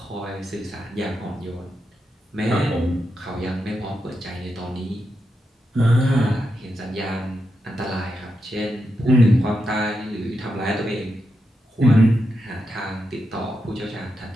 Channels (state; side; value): normal; both; correlation 0.85